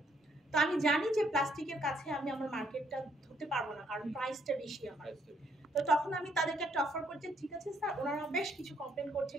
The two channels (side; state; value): both; normal; correlation 0.70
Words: তো আমি জানি যে প্লাস্টিকের কাছে আমি আমার মার্কেটটা ধরতে পারবো না, কারণ প্রাইসটা বেশি আমার। তো তখন আমি তাদেরকে একটা অফার করছি, ঠিক আছে স্যার। ওনারা বেশ কিছু কমপ্লেন